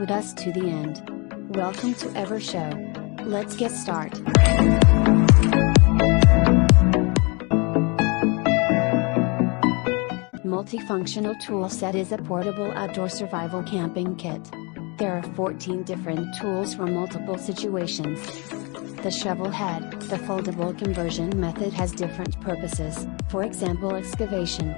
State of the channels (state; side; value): quieter; right; 30.3 dB